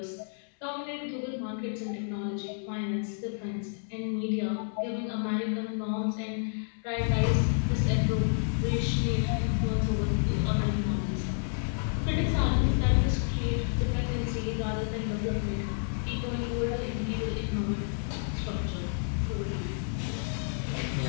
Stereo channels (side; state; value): right; silent; digital silence